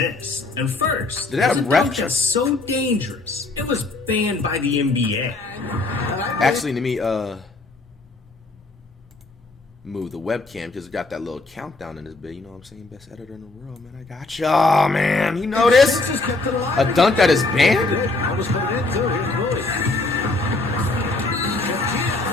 And first, did that a ref dunk that's so dangerous it was banned by the NBA. Actually, let me move the webcam because it got that little countdown in this bit. You know what I'm saying? Best editor in the world, man. I got you. Oh, man. You know this? A dunk that is banned?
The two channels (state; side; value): quieter; right; 3.3 dB